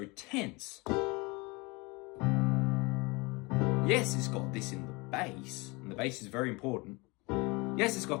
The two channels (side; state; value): right; quieter; 26.3 dB